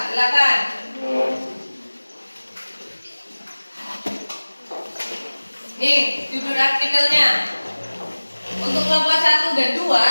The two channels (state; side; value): inverted; both; correlation -1.00